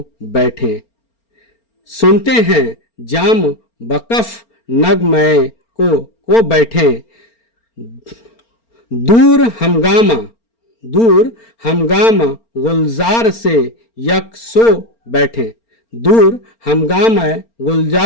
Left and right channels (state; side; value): late; right; 4.4 ms